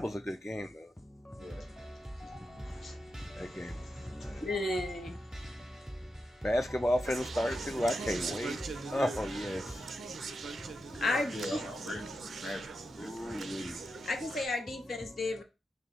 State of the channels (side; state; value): both; normal; correlation 0.87